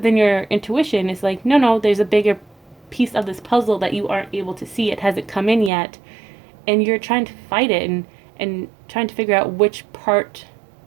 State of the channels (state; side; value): drops out; left; at 5.7 s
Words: then your intuition is like, no, there's a bigger piece of this puzzle that you aren't able to see. It hasn't come in yet. And you're trying to fight it and trying to figure out which part